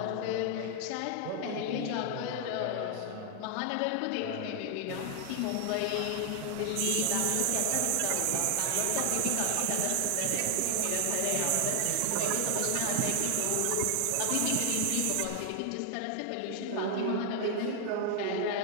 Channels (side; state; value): both; different; correlation 0.00